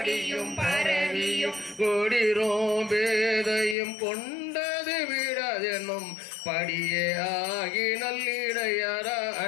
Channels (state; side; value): drops out; right; at 3.8 s